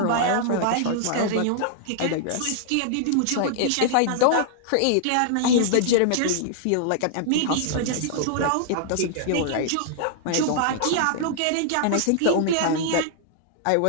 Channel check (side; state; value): both; different; correlation -0.01